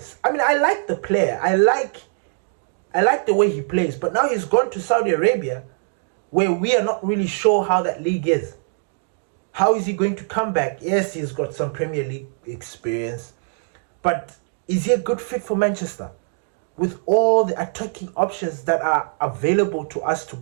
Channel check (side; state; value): left; silent; digital silence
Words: I mean, I like the player. I like the way he plays. But now he's gone to Saudi Arabia, where we are not really sure how that league is. How is he going to come back? Yes, he's got some Premier League experience. But is he a good fit for Manchester? With all the attacking options that are available to us to